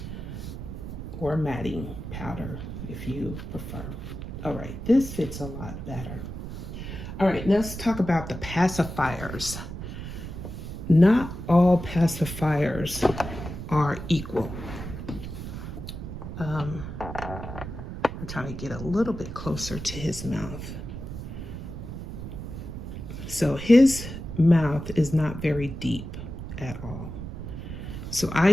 or matting powder if you prefer. All right, this fits a lot better. All right, let's talk about the pacifiers. Not all pacifiers are equal. I'm trying to get a little bit closer to his mouth. So his mouth is not very deep at all. So I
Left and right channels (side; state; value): right; noise; rumble, 8 dB below the sound